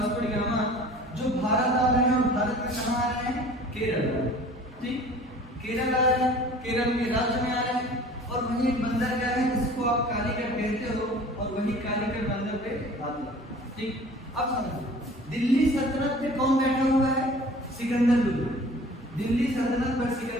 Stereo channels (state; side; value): normal; both; correlation 0.46